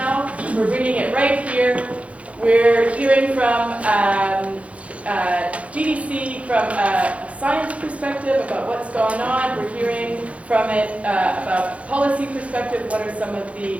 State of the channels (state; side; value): late; left; 0.064 ms